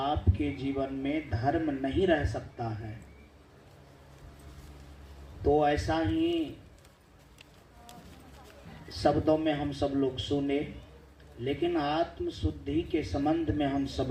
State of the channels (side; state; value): both; identical; correlation 1.00